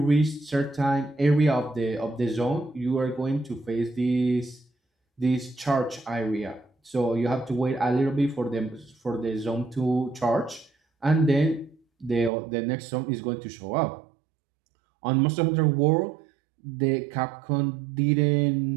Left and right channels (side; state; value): left; drops out; at 12.3 s